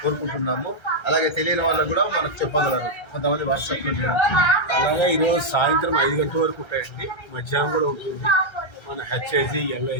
కోరుకుంటున్నాము. అలాగే తెలియని వాళ్ళకు కూడా మనకు చెప్పగలరు, కొంతమంది వాట్సాప్లో చేయడం. అలాగే ఈరోజు సాయంత్రం 5 గంటల వరకు ఉంటాయండి. మధ్యాహ్నం కూడా ఉంటుంది. మన HIG,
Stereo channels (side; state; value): right; late; 1.3 ms